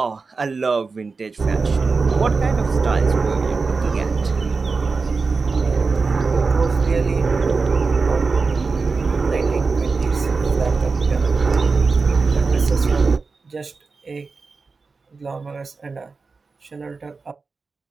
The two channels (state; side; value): quieter; left; 4.3 dB